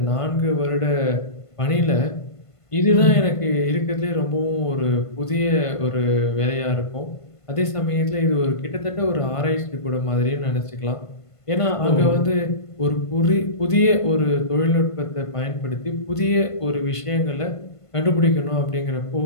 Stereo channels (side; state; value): right; late; 1.5 ms